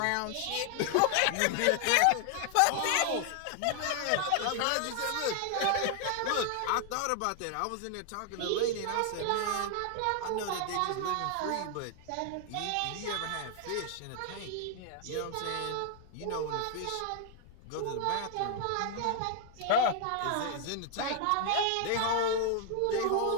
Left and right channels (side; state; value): both; different; correlation 0.00